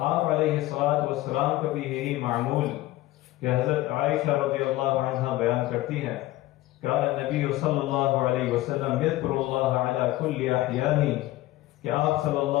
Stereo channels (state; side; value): quieter; right; 16.8 dB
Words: آپ علیہ الصلوۃ والسلام کا بھی یہی معمول کہ حضرت عائشہ رضی اللہ عنہا بیان کرتی ہیں، کان النبی صلی اللہ علیہ وسلم یذکر اللہ علی کل احیانہ، کہ آپ صلی